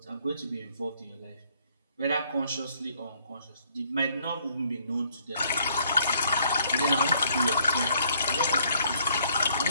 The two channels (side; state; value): both; inverted; correlation -0.66